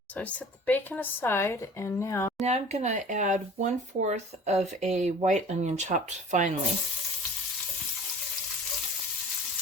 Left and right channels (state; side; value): normal; both; correlation 0.46